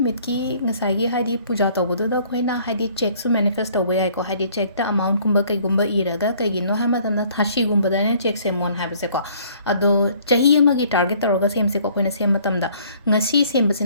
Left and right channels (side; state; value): both; inverted; correlation -0.58